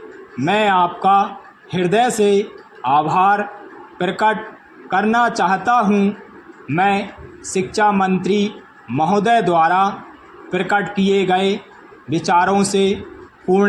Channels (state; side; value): identical; both; correlation 1.00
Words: मैं आपका हृदय से आभार प्रकट करना चाहता हूँ। मैं शिक्षा मंत्री महोदय द्वारा प्रकट किए गए विचारों से